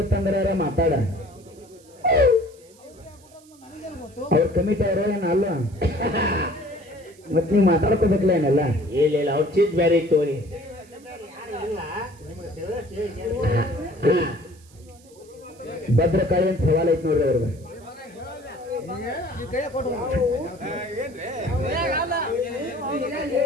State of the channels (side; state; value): right; noise; hiss, 27 dB below the sound